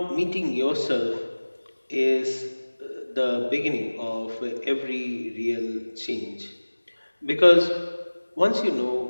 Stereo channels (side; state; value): both; inverted; correlation -1.00